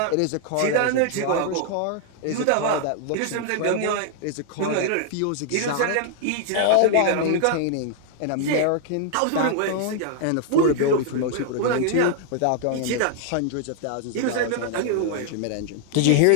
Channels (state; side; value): different; both; correlation 0.00